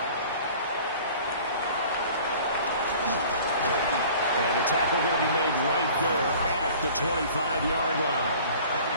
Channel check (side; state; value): both; inverted; correlation -0.47